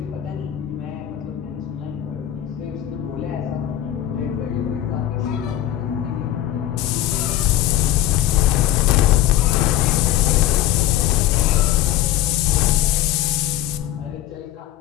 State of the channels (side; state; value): right; quieter; 12.5 dB